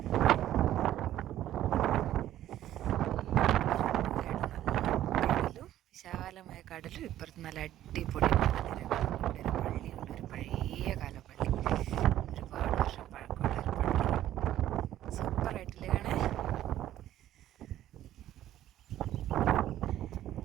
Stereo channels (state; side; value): quieter; left; 12.8 dB